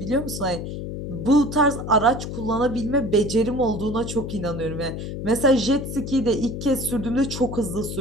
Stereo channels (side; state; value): left; noise; hum, 6 dB below the sound